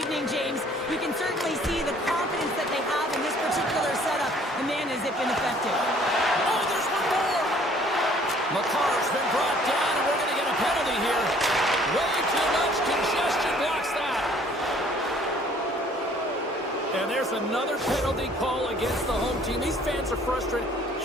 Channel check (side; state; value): both; normal; correlation 0.57